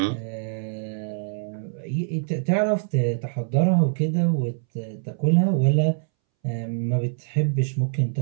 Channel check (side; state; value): left; silent; 62 dB below the other